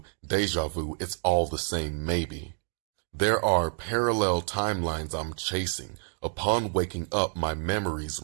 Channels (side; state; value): left; silent; 59 dB below the other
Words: deja vu, it's all the same maybe. There are parallel timelines I'm chasing. Upon waking up, my memories